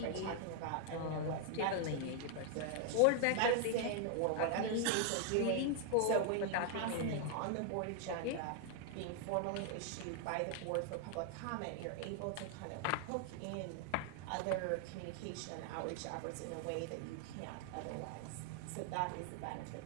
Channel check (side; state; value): both; different; correlation 0.00